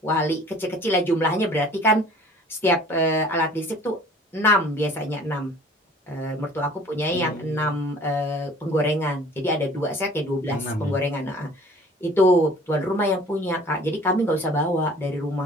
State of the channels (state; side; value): normal; both; correlation 0.50